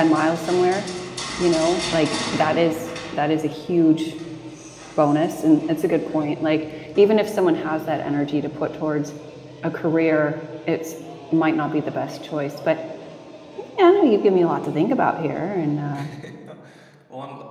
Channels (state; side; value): identical; both; correlation 1.00